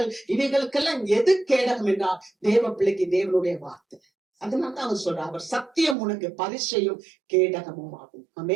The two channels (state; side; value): drops out; left; at 6.0 s